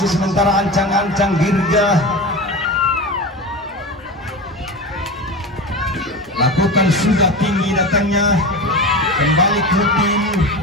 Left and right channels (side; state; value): both; normal; correlation 0.27